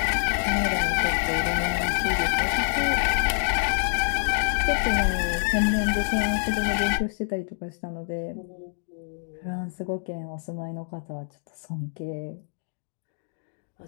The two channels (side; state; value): right; silent; digital silence